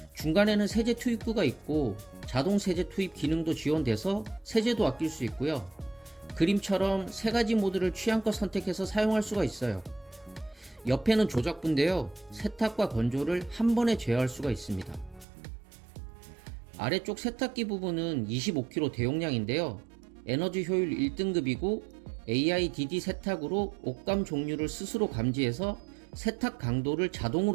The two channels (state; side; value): drops out; left; at 15.2 s